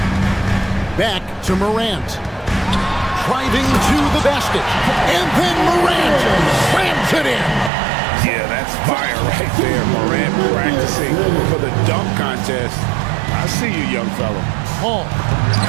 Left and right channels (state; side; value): drops out; left; at 7.7 s